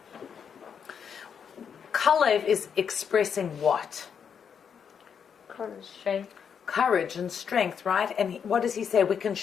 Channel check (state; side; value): quieter; right; 7.2 dB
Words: Caleb is expressing what? Strength. courage and strength, right? And what does he say? We can